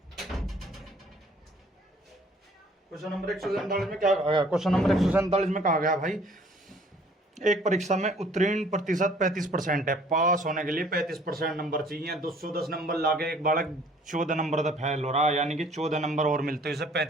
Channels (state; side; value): normal; both; correlation 0.56